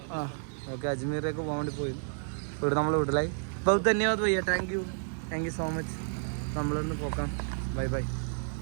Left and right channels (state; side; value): silent; left; 57 dB below the other